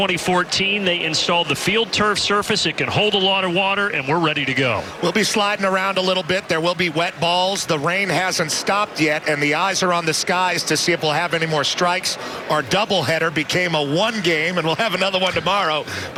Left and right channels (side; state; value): both; identical; correlation 1.00